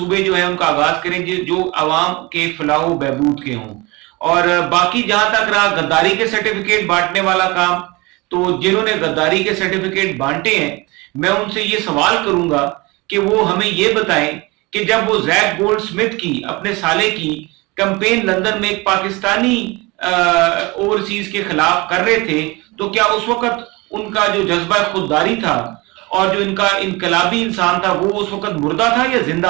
जो है उनका आगाज करें जो आवाम के फलाह बहबूद के हों। और बाकी जहां तक रहा गद्दारी के सर्टिफिकेट बांटने वाला काम, तो जिन्होंने गद्दारी के सर्टिफिकेट बांटे हैं मैं उनसे ये सवाल करूंगा कि वो हमें ये बताएं कि जब वो जैक गोल्ड स्मिथ की, अपने साले की कैंपेन लंदन में एक पाकिस्तानी ओवरसीज के खिलाफ कर रहे थे, तो क्या उस वक्त उनका जो जज्बा खुददारी था और जो इनका इनकलाबी इंसान था वो उस वक्त मुर्दा था या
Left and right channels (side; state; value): left; quieter; 24.3 dB